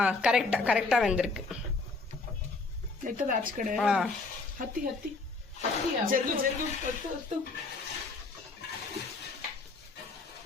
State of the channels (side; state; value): right; quieter; 3.8 dB